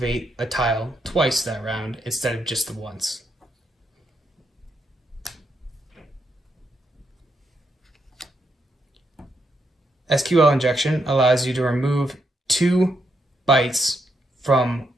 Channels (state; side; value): normal; both; correlation 0.80